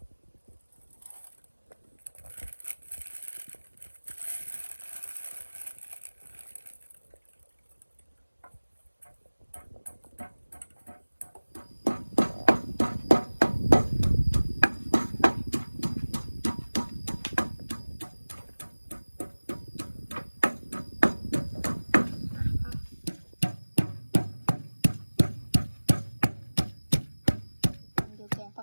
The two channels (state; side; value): inverted; both; correlation -1.00